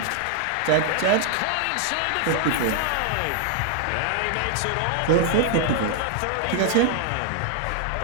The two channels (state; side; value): different; both; correlation 0.00